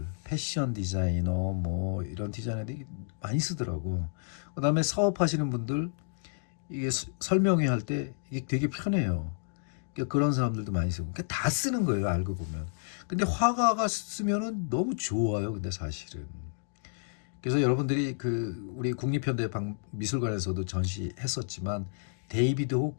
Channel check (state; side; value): silent; right; digital silence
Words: 패션 디자이너, 뭐 이런 디자이너들이 많이 쓰더라고. 그 다음에 사업하시는 분들, 이게 설명회 할 때 이게 되게 편해요. 그러니까 그런 사람들도 많이 쓰고. 그러니까 다 쓰는 거예요, 알고 보면. 근데 화가가 쓰면은 너무 좋아요, 근데 사실은. 그래서 여러분들이 우리 국립현대 미술관에서도 전시했었지만, 데이비드